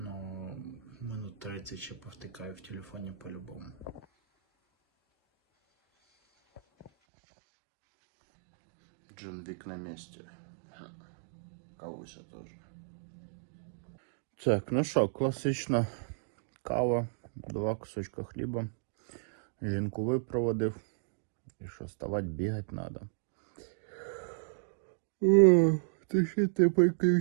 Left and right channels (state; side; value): drops out; left; at 6.9 s